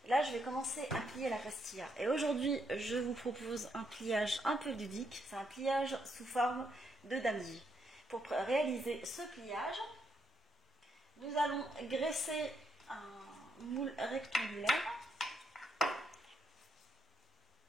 Là, je vais commencer à plier la pastilla. Et aujourd'hui, je vous propose un pliage un peu ludique. C'est un pliage sous forme de damji. Pour réaliser ce pliage, nous allons graisser un moule rectangulaire.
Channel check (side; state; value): both; normal; correlation 0.77